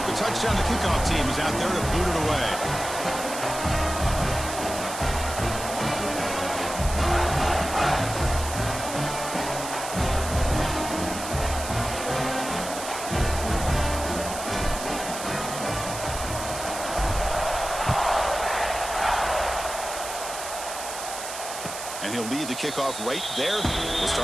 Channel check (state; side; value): noise; right; hiss, 8 dB below the sound